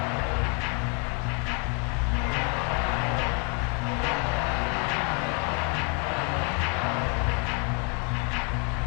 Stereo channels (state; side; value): quieter; right; 36.2 dB